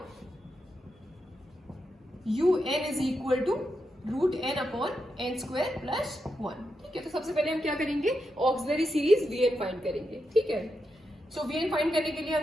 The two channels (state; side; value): normal; both; correlation 0.85